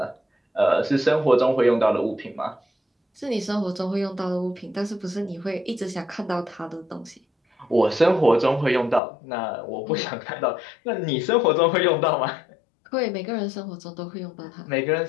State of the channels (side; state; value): right; drops out; at 9.0 s